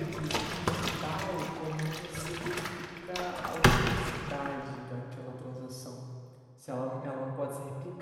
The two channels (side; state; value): both; identical; correlation 1.00